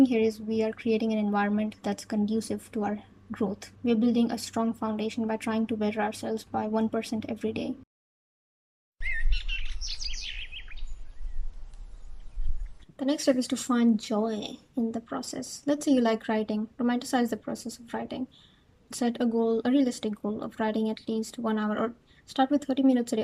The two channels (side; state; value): both; identical; correlation 1.00